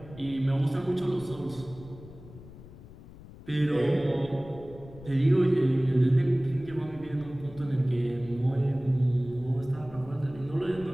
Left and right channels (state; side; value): noise; left; rumble, 18 dB below the sound